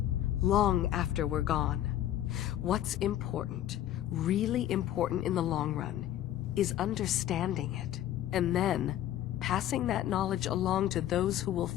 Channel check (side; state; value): right; quieter; 12.3 dB